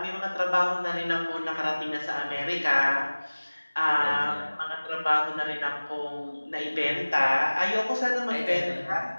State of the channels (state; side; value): inverted; both; correlation -1.00